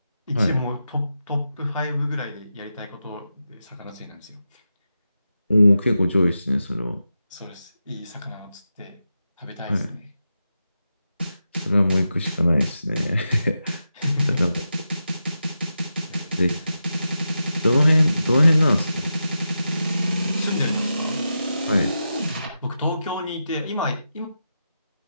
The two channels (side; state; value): both; inverted; correlation -0.89